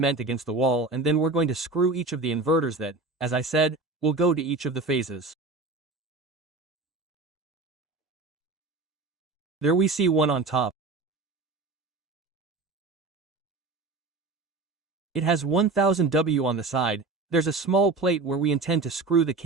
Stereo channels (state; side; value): quieter; left; 3.6 dB